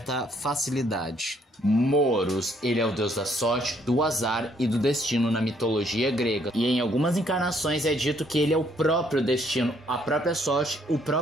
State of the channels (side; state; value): both; normal; correlation 0.67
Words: facilidade. Moros, ele é o deus da sorte, do azar e do destino na mitologia grega. E em algumas encarnações é dito que ele é o próprio destino, a própria sorte, o